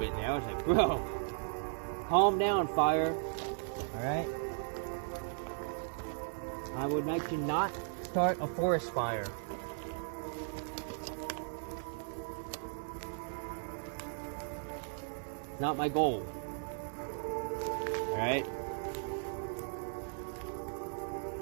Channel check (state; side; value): silent; left; digital silence